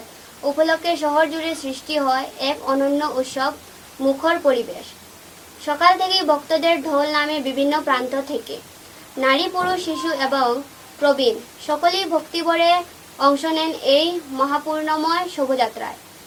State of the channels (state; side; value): identical; both; correlation 1.00